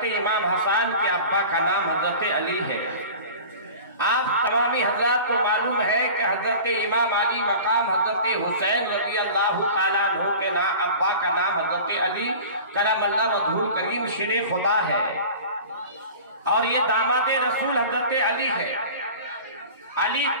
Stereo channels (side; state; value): both; inverted; correlation -0.38